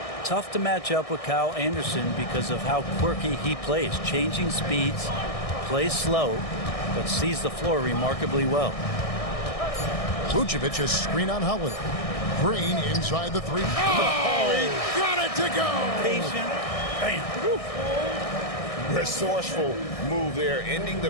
Tough to match up with Kyle Anderson because of how quirky he plays. Changing speeds, plays slow, but sees the floor remarkably well. Vucevic has screen on Holiday. Green inside the three. Oh, he got it to go. Patient. Bam. Resourceful move there, ending the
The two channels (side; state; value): right; late; 1.6 ms